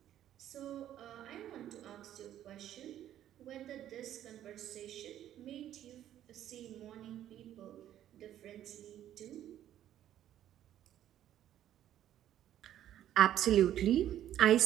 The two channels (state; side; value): quieter; left; 11.6 dB